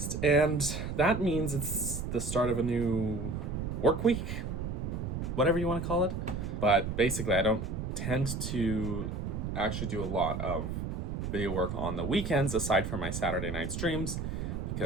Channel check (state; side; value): noise; right; rumble, 4 dB below the sound